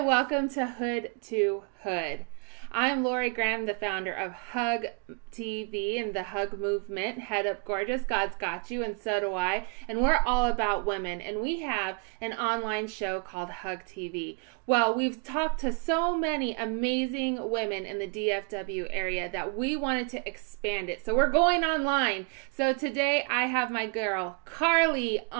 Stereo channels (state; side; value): quieter; left; 34.4 dB